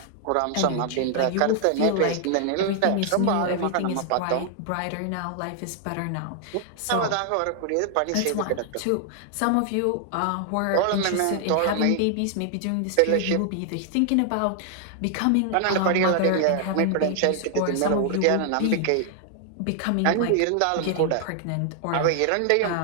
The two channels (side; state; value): both; different; correlation 0.00